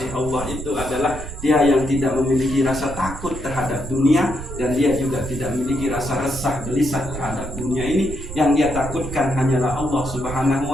Allah itu adalah dia yang tidak memiliki rasa takut terhadap dunia, dan dia juga tidak memiliki rasa resah gelisah terhadap dunia ini. Yang dia takutkan hanyalah Allah Subhanahu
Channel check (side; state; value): right; noise; rumble, 10 dB below the sound